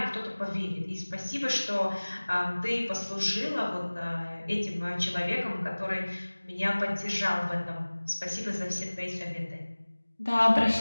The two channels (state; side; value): inverted; both; correlation -1.00